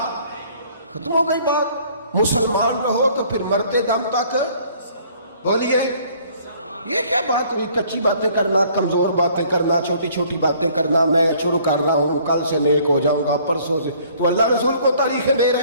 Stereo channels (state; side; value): inverted; both; correlation -0.58